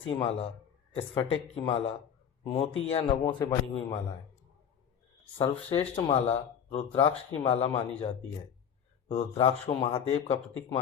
माला, स्फटिक की माला, मोती या नवों से बनी हुई मालाएं। सर्वश्रेष्ठ माला रुद्राक्ष की माला मानी जाती है। रुद्राक्ष को महादेव का प्रतीक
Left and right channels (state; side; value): quieter; right; 8.2 dB